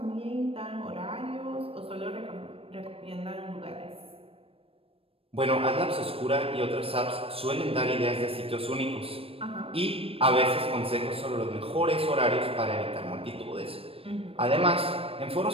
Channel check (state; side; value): late; left; 0.28 ms